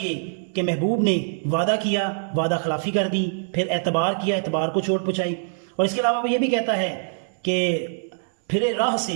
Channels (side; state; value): left; silent; digital silence